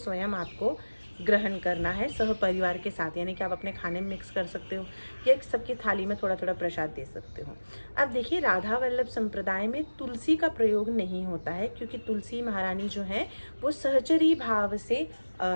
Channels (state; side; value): inverted; both; correlation -1.00